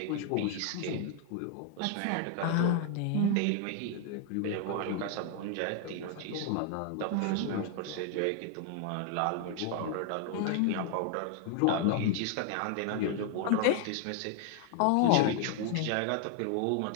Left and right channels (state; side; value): different; both; correlation 0.00